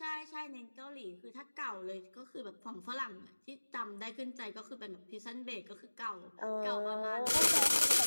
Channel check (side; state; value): both; inverted; correlation -1.00